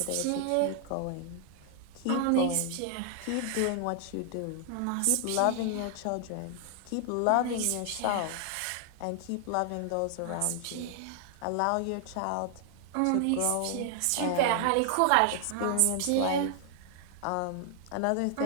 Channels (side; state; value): both; different; correlation 0.00